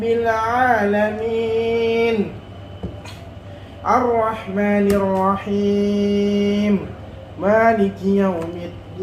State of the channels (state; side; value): identical; both; correlation 1.00